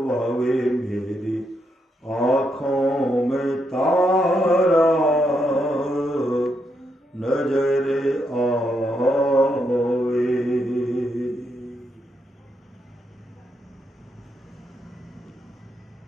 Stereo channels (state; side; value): normal; both; correlation 0.80